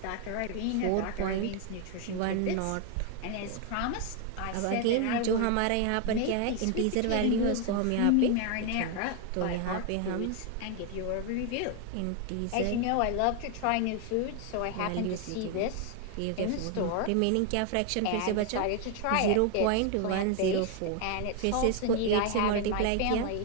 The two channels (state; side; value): different; both; correlation 0.01